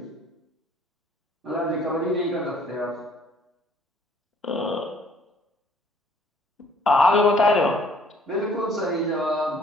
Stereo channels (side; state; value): both; normal; correlation 0.59